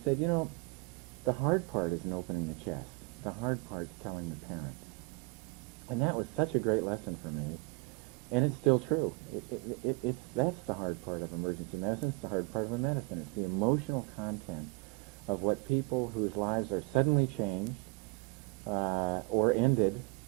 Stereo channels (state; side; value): quieter; left; 27.4 dB